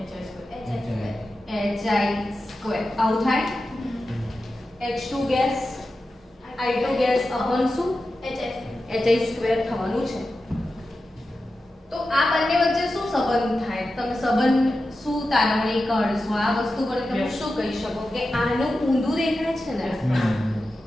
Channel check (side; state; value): both; normal; correlation 0.92